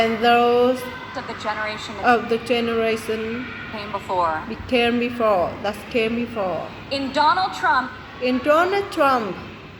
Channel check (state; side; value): identical; both; correlation 1.00